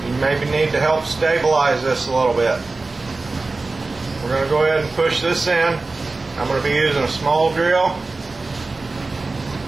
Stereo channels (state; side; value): quieter; left; 3.5 dB